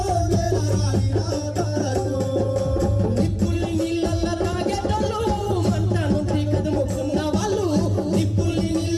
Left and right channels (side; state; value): both; identical; correlation 1.00